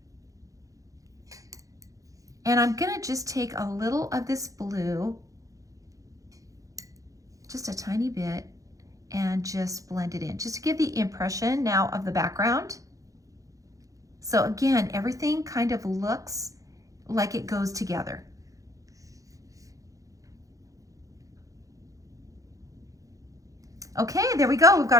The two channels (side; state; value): left; late; 0.16 ms